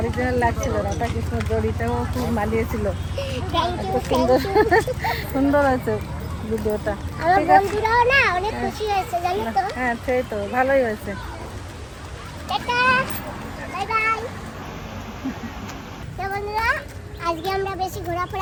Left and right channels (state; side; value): identical; both; correlation 1.00